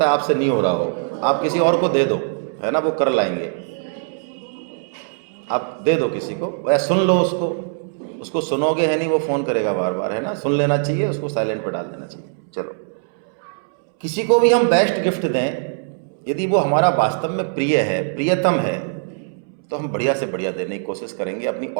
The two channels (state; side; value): silent; left; 65 dB below the other